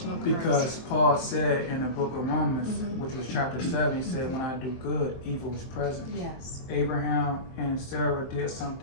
curse. Because Paul said in the book of Romans, which was chapter 7, he said, when I do good, evil is present. Yes. Abraham and Sarah did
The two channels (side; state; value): right; late; 23 ms